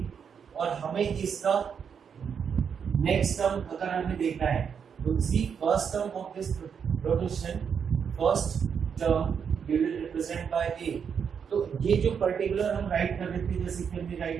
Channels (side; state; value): left; quieter; 7.0 dB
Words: और हमें इसका नेक्स्ट टर्म अगर हमें देखना है तो see first term of this progression, first term we will represent by a। तो ये जो पर्टिकुलर हम राइट कर रहे थे, जैसे कि हमने